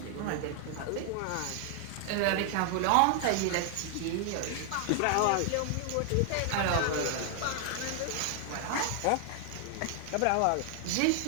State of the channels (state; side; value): different; both; correlation 0.00